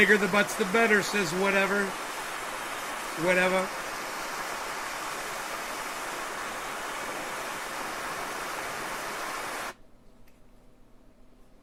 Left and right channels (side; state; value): both; identical; correlation 1.00